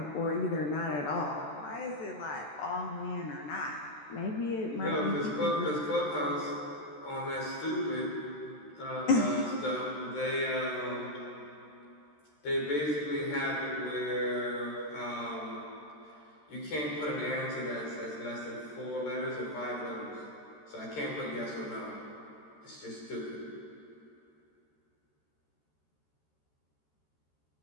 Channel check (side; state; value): right; late; 13 ms